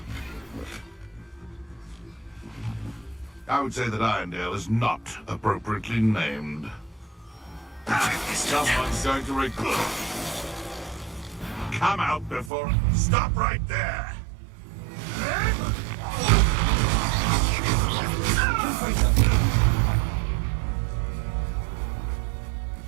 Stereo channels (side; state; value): left; drops out; at 12.5 s